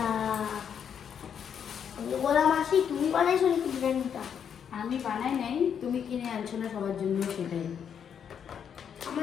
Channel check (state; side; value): quieter; right; 7.9 dB